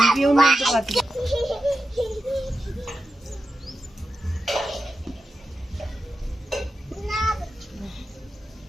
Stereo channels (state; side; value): normal; both; correlation 0.90